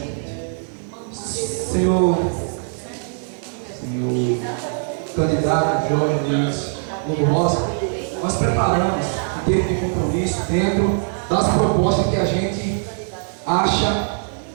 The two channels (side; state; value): left; silent; digital silence